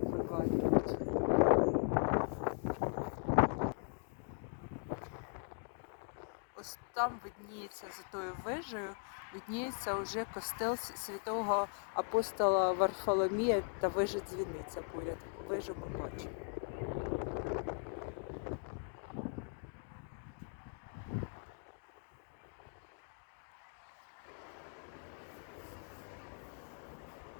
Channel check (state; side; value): silent; right; 51 dB below the other